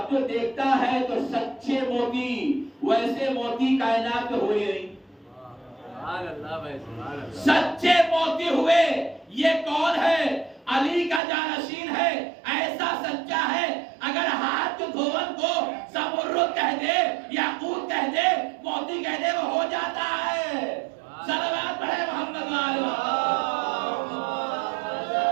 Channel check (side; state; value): left; drops out; at 11.2 s